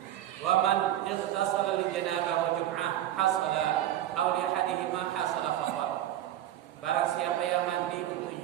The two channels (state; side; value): quieter; left; 12.3 dB